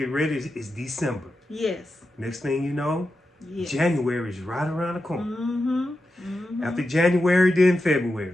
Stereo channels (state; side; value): normal; both; correlation 0.90